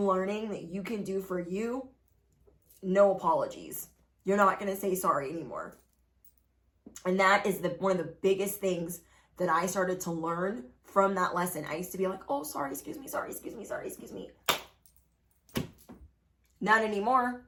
that you can do for you. No apologies. You're not going to say sorry anymore. And that is one of the biggest things that I started to learn from that lesson. I used to be like, oh, sorry, excuse me. Not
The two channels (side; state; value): both; identical; correlation 1.00